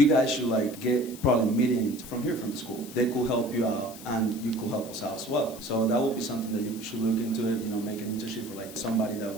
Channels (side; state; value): left; noise; hiss, 16 dB below the sound